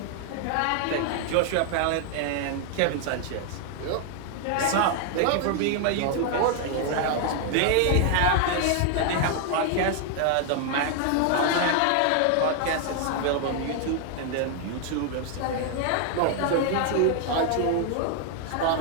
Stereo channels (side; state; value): both; different; correlation 0.00